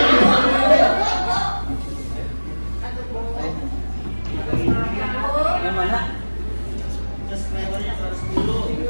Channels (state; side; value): inverted; both; correlation -1.00